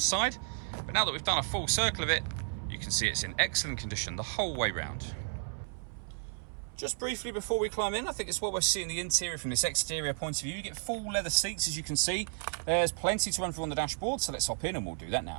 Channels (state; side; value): silent; left; 56 dB below the other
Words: But now that we've done a full circle of it, you can see it's in excellent condition the whole way round. Just briefly before we climb in, I think it's what we're seeing the interior from this exterior point of view. You get full leather seats, as you can see. There's plenty to run through on the dashboard, so let's hop in and we'll do that